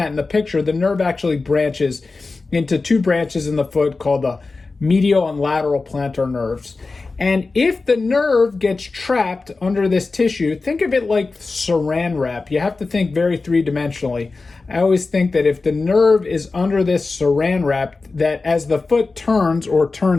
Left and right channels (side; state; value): right; quieter; 3.8 dB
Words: in the picture, the nerve actually branches into two branches in the foot called the medial and lateral plantar nerves. And if the nerve gets trapped under this tissue, think of it like saran wrap. You have to think very three-dimensionally. I always think that if the nerve is under this saran wrap, that as the foot turns or